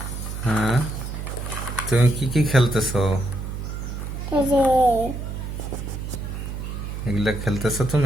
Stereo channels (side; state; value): right; noise; hum, 6 dB below the sound